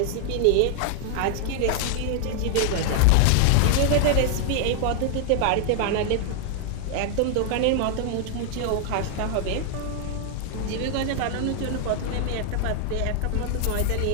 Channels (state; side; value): different; both; correlation 0.00